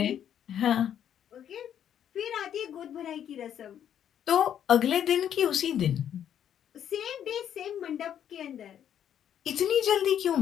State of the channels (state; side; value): quieter; right; 9.7 dB